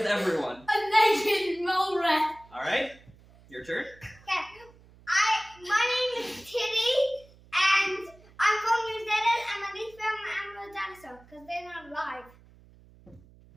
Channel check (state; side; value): noise; right; hum, 25 dB below the sound